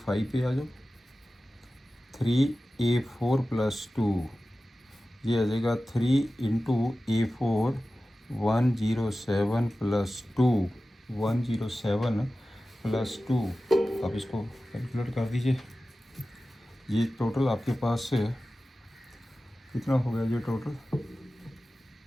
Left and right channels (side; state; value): both; normal; correlation 0.95